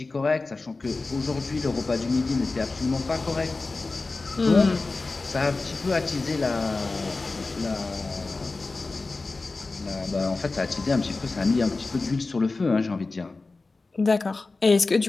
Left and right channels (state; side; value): quieter; right; 3.6 dB